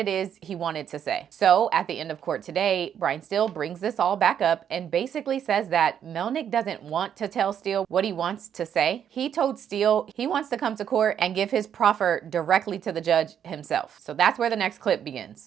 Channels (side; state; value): left; quieter; 8.9 dB